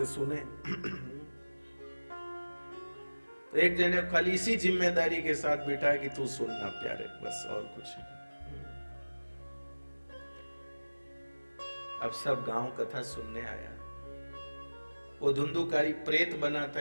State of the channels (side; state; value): both; inverted; correlation -1.00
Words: सुने। तो एक जने खाली इसी जिम्मेदारी के साथ बिठाया कि तू सुनना प्यारे, बस, और कुछ नहीं। अब सब गांव कथा सुनने आया। वो धुंधुकारी प्रेत बना था,